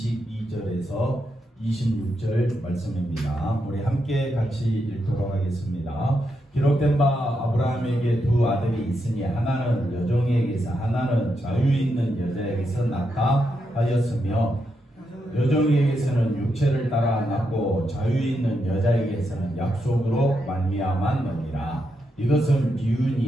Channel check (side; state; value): both; normal; correlation 0.83